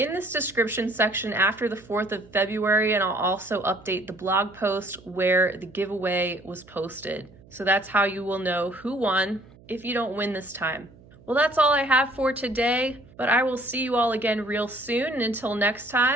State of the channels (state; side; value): noise; right; hum, 24 dB below the sound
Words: this description section after the 4th of February, and I'll also update the blog post where the giveaway was posted. So that's how you will know who won if you don't win this time. Well, that's all I have for today, but I will see you all again real soon, and until next